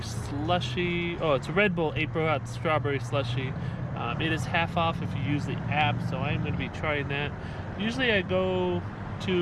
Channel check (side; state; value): both; identical; correlation 1.00